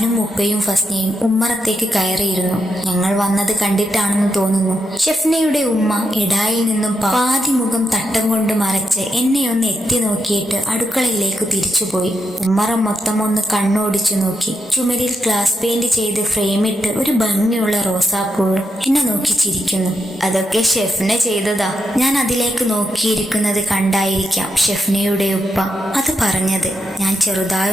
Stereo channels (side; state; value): both; normal; correlation 0.84